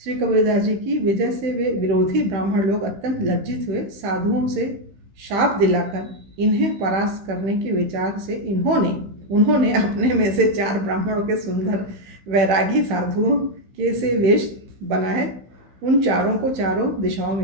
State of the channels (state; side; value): late; left; 15 ms